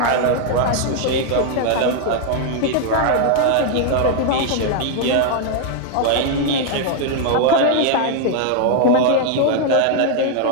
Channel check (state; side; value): different; both; correlation 0.00